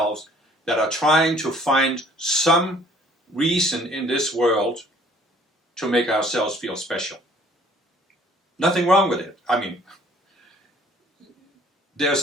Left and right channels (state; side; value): normal; both; correlation 0.57